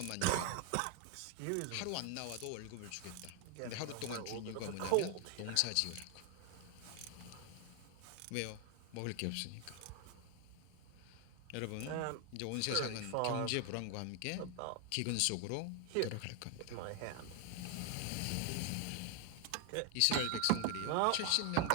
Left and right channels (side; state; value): both; different; correlation 0.00